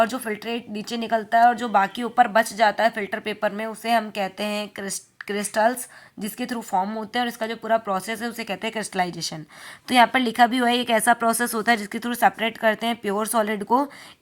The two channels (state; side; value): identical; both; correlation 1.00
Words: जो फिल्ट्रेट नीचे निकलता है और जो बाकी ऊपर बच जाता है फिल्टर पेपर में, उसे हम कहते हैं क्रिस्टल्स, जिसके थ्रू फॉर्म होते हैं, और इसका जो पूरा प्रोसेस है उसे कहते हैं क्रिस्टलाइजेशन। तो यहाँ पर लिखा भी हुआ है, एक ऐसा प्रोसेस होता है जिसके थ्रू सेपरेट करते हैं प्योर सॉलिड को,